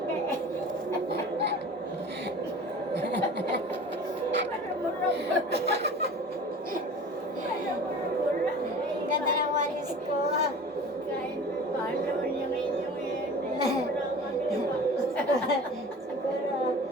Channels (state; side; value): normal; both; correlation 0.40